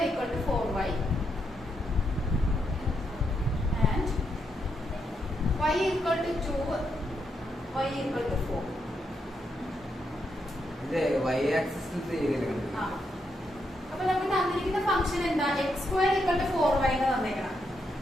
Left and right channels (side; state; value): both; normal; correlation 0.80